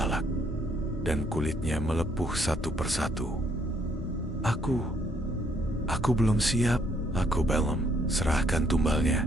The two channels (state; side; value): normal; both; correlation 0.68